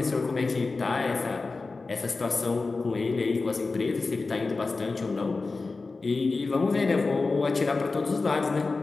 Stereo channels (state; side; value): quieter; right; 3.8 dB